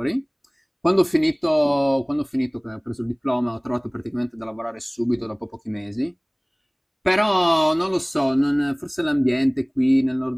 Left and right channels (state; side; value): identical; both; correlation 1.00